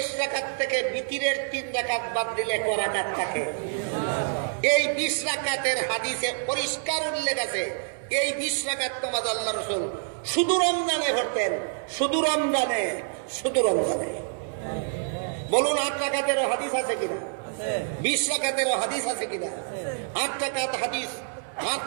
রাকাত থেকে বিতিরের 3 রাকাত বাদ দিলে ক রাকাত থাকে? এই 20 রাকাতের হাদিসে পরিষ্কার উল্লেখ আছে এই 20 রাকাত নামাজ আল্লাহর রাসূল শুধু রমজানে পড়তেন। শুধু রমজানে, শুধু রমজানে। বলুন 8 রাকাতেরও হাদিস আছে কিনা? 20 রাকাতেরও হাদিস আছে কিনা? 8 রাকাত হাদিস, 8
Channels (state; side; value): silent; left; digital silence